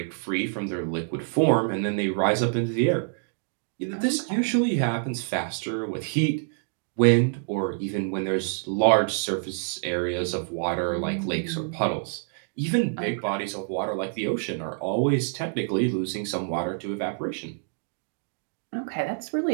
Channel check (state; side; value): silent; left; digital silence